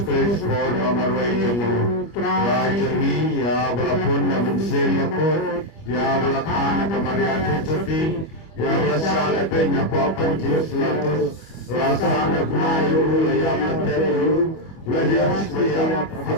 Kristus nomor wajahmu Rajani ya walaupun namun semakot Ya walakana kemaria keseti Ya walasala penya papan Yesus latus Ya sana kunayu ya matelu Ya Yesus kaya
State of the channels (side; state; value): right; late; 25 ms